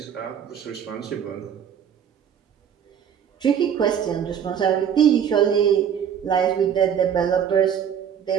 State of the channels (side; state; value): left; quieter; 8.4 dB